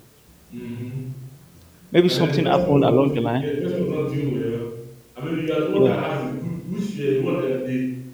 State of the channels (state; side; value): identical; both; correlation 1.00